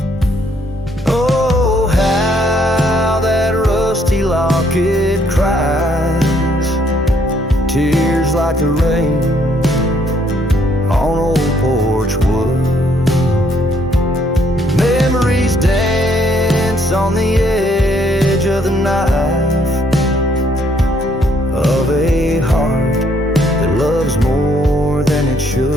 Oh, how that rusty locket cries, tears like the rain on old porch wood. Memories dance on the edge of the knife of a heart that loves more than it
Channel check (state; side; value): normal; both; correlation 0.68